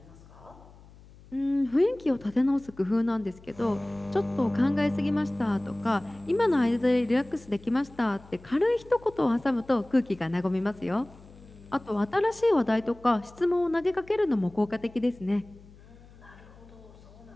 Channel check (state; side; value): noise; left; hum, 23 dB below the sound